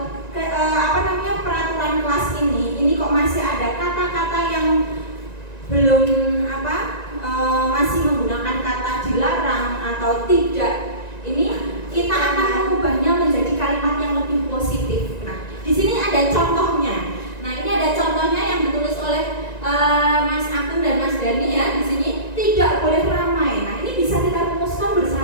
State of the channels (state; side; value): late; right; 1.9 ms